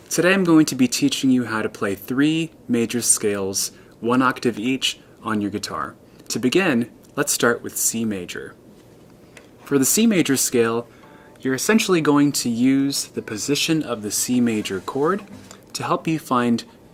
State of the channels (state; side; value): identical; both; correlation 1.00